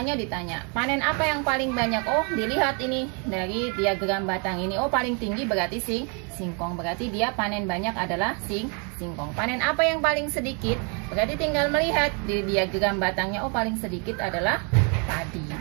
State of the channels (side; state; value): left; quieter; 35.8 dB